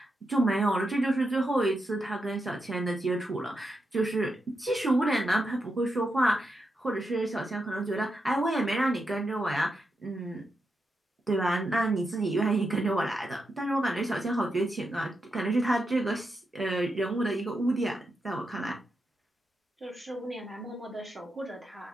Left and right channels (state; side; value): normal; both; correlation 0.86